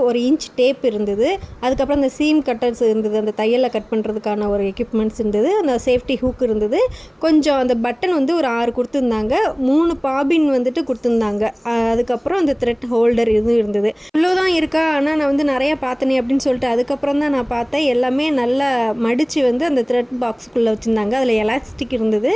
1 இன்ச் டேப் இருந்தது, அதுக்கப்புறம் அந்த சீம் கட்டர்ஸ் இருந்தது, அந்த தையலை கட் பண்ணுறதுக்கான ஒரு எக்யூப்மெண்ட்ஸ் இருந்தது, அந்த சேஃப்டி ஹூக் இருந்தது, கொஞ்சம் அந்த பட்டன் ஒரு 6 கொடுத்துருந்தாங்க, 3 பாபின் கொடுத்துருந்தாங்க, அதுக்கப்புறம் அந்த த்ரெட் ஹோல்டர் இதுவும் இருந்தது. இவ்வளோதான் இருக்கா, ஆனால் நான் நிறையா பார்த்தனே அப்படின்னு சொல்லிட்டு அதுக்கப்புறம் தான் நான் பார்த்தேன். எல்லாமே நல்லா மடித்து அந்த த்ரெட் பாக்ஸுக்குள்ளே வச்சுருந்தாங்க. அதில் எலாஸ்டிக் இருந்தது,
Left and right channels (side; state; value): both; identical; correlation 1.00